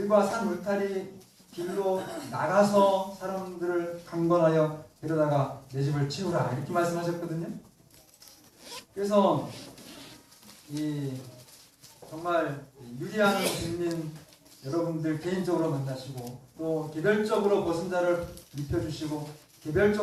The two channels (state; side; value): identical; both; correlation 1.00